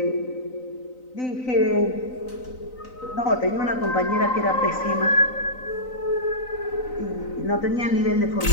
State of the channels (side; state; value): right; late; 3.9 ms